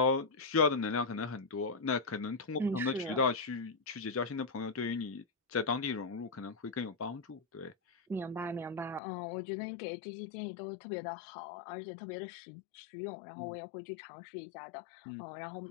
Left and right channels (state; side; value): drops out; right; at 9.0 s